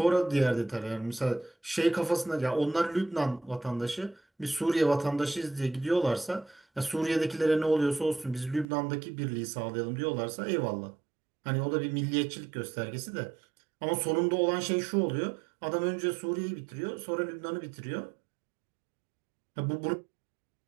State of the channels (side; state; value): left; drops out; at 8.7 s